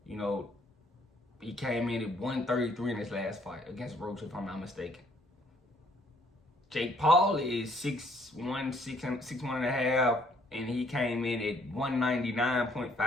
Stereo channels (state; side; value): normal; both; correlation 0.64